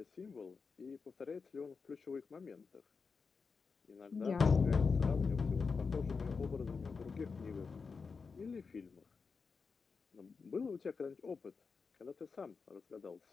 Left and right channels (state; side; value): quieter; right; 5.0 dB